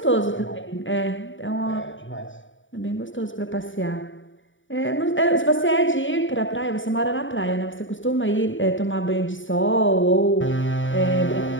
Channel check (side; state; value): right; late; 0.56 ms